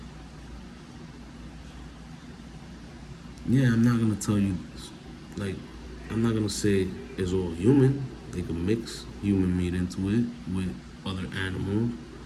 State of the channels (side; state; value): both; identical; correlation 1.00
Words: Yeah, I'm not gonna tell you, like, I'm not gonna say it's all human. They can mix human meat into it with other animals